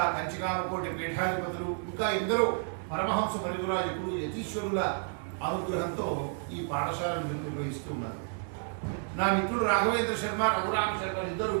కంచికామకోటి పీఠాధిపతులు, ఇంకా ఎందరో పరమహంస పరివిరాజకులు, యతీశ్వరుల అనుగ్రహంతో ఈ పాఠశాలను నిర్వహిస్తూ ఉన్నారు. నా మిత్రుడు రాఘవేంద్ర శర్మ, రఘురామ శర్మ ఇద్దరు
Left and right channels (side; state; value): left; silent; 57 dB below the other